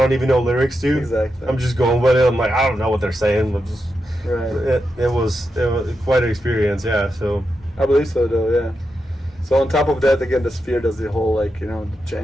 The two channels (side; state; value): both; normal; correlation 0.87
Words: don't even know lyrics to. Exactly. I'm just going with it. I'm like, I don't know what they're saying. I'm just Right. it was quite an experience. Yeah. So I believe so, though. Yeah. So on top of that, again, the Sphere does the whole like the